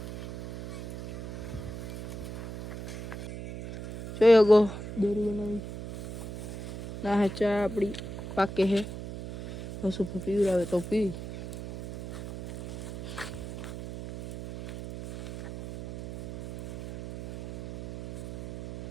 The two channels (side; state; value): right; noise; hum, 9 dB below the sound